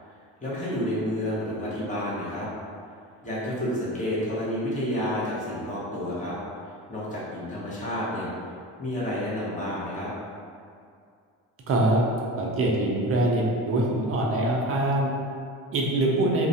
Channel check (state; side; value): normal; both; correlation 0.32